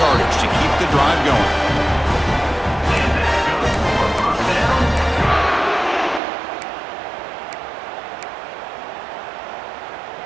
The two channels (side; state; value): left; drops out; at 6.2 s